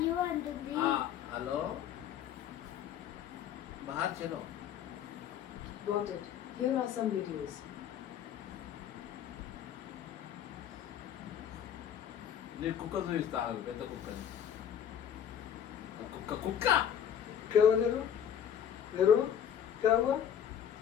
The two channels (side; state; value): right; quieter; 9.2 dB